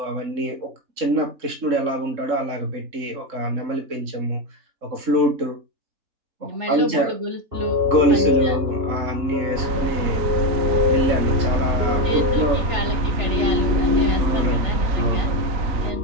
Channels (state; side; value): late; left; 3.7 ms